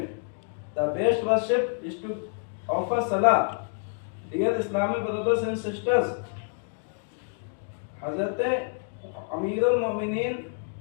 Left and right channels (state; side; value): silent; right; 59 dB below the other